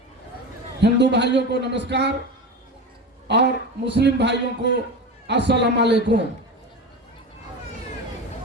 हिंदू भाइयों को नमस्कार और मुस्लिम भाइयों को अस्सलाम वालेकुम।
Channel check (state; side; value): normal; both; correlation 0.26